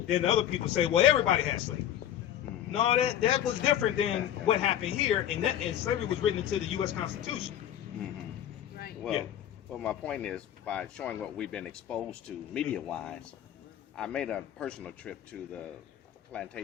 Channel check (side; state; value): right; quieter; 11.1 dB